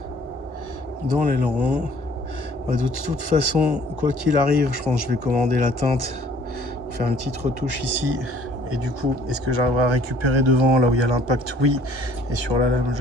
dans l'aileron. De toute façon, quoi qu'il arrive, je pense que je vais commander la teinte pour faire une petite retouche ici. Et du coup, est-ce que j'arriverai à récupérer devant là où il y a l'impact? Oui. Et sur la lame,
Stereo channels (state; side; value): late; left; 1.1 ms